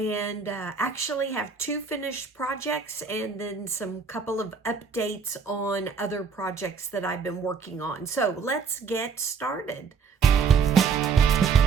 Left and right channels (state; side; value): quieter; left; 5.6 dB